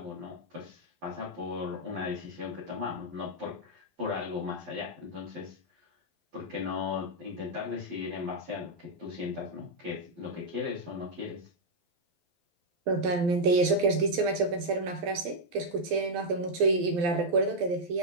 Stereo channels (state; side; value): late; left; 12 ms